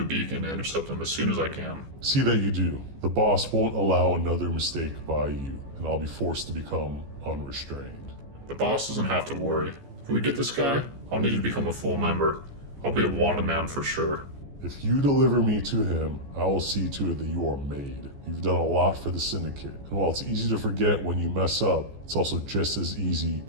a beacon to intercept him as soon as I can. See that you do. The boss won't allow another mistake by you, and I'll be forced to become unrestrained. The boss doesn't have to worry. If we get this guy, I'll need you to become a full member. I'll be a wanted man for sure. If you deliver me to him, I will see to it that you are made. You've done a lot for the Syndicate, and while it's easy to forget when you mess up, it's also just as easy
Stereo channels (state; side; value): late; left; 14 ms